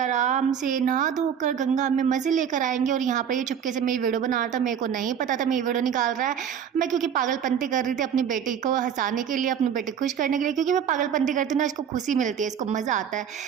से नहा धोकर गंगा में मज़े लेकर आएंगे। और यहाँ पर ये चुपके से मेरी वीडियो बना रहा था, मेरे को नहीं पता था मेरी वीडियो निकाल रहा है। मैं क्योंकि पागलपंती कर रही थी अपनी बेटी को हंसाने के लिए, अपनी बेटी खुश करने के लिए, क्योंकि मैं पागलपंती करती हूँ ना, इसको खुशी मिलती है, इसको मज़ा आता है।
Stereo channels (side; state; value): left; quieter; 8.2 dB